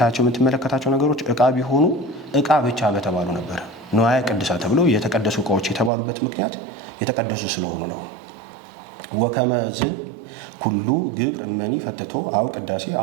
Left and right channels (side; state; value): left; drops out; at 5.9 s